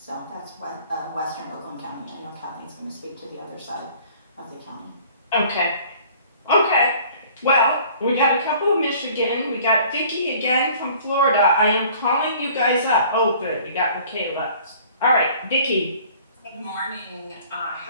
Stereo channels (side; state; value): both; inverted; correlation -0.51